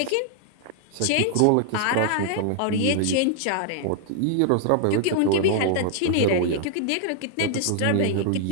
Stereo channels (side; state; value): both; different; correlation -0.01